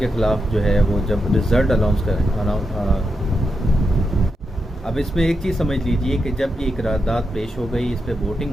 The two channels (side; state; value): both; normal; correlation 0.85